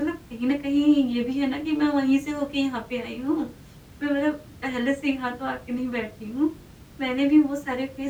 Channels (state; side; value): identical; both; correlation 1.00